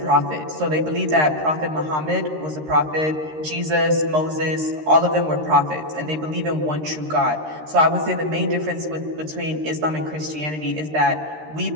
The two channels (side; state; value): left; late; 13 ms